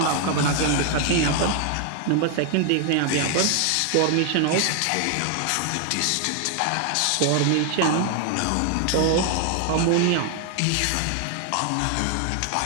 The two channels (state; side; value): different; both; correlation 0.00